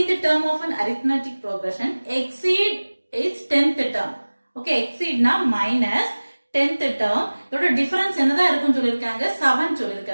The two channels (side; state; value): both; inverted; correlation -1.00